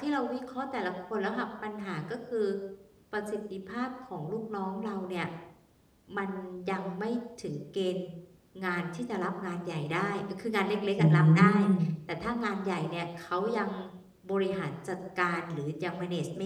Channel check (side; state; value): both; identical; correlation 1.00